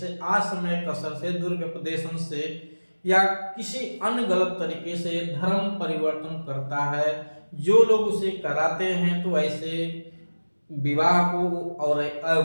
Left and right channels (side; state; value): both; inverted; correlation -1.00